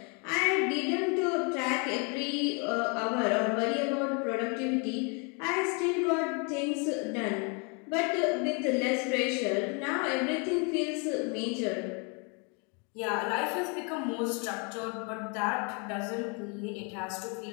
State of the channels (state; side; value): quieter; right; 34.6 dB